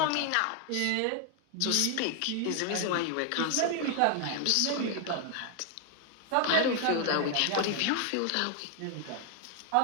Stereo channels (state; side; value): different; both; correlation 0.01